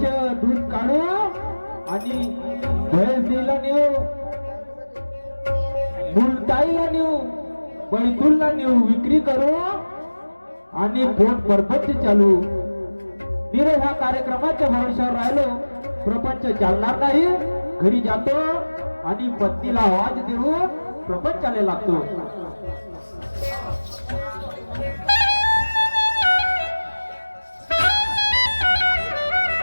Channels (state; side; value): inverted; both; correlation -1.00